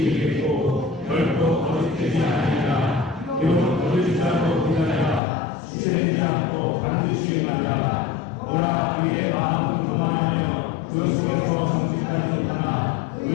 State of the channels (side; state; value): right; drops out; at 5.2 s